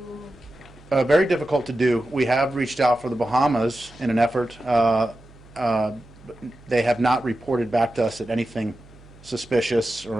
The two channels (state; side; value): noise; right; hum, 24 dB below the sound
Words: Very difficult to do. We have reached out for the Bahamas in an effort. They have not reported back to us at anything suspicious